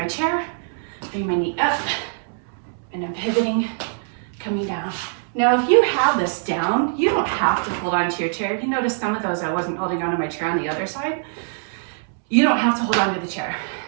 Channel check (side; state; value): left; silent; 64 dB below the other